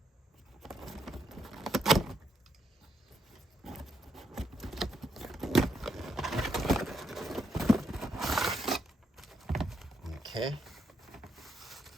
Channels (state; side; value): normal; both; correlation 0.77